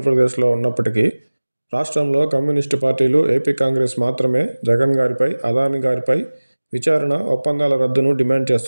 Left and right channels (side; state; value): both; inverted; correlation -1.00